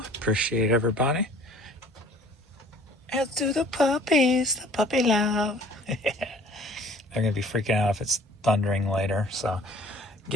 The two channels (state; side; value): normal; both; correlation 0.51